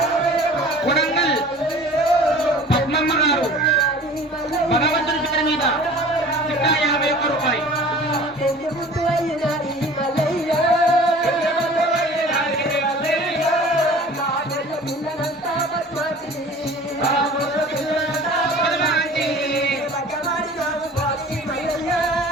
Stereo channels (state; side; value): normal; both; correlation 0.44